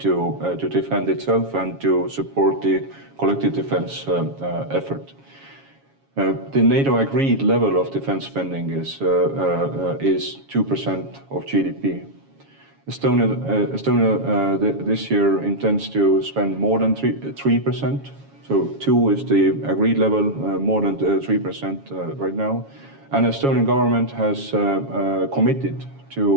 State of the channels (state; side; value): late; left; 7.3 ms